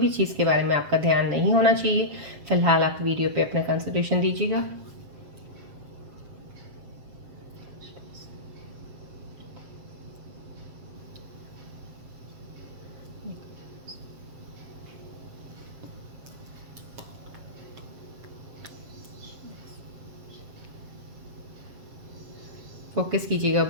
चीज़ के बारे में आपका ध्यान नहीं होना चाहिए। फिलहाल आप वीडियो पे अपना कंसंट्रेशन दीजिएगा। फोकस कीजिएगा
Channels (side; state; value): left; late; 7.5 ms